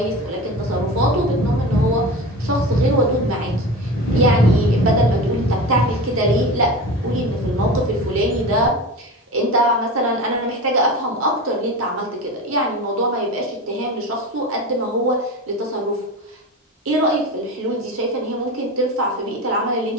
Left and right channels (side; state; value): both; normal; correlation 0.29